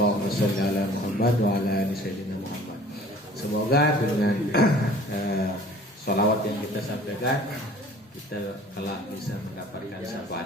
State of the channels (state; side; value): normal; both; correlation 0.49